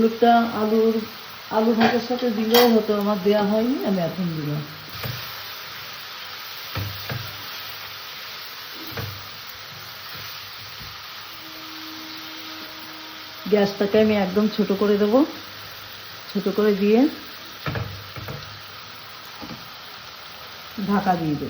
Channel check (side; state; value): both; identical; correlation 1.00